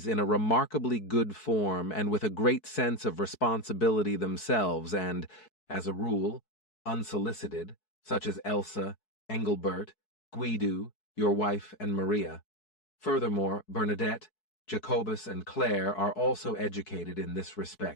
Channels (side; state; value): right; late; 4.6 ms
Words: in a remarkably good form and with a great sense of responsibility themselves and, as a rule, unsolicited, such as Elsa, Engelbert, Guido, your wife, and Maria. Furthermore, Bernadette, Jacobus, and Claire are also educated in this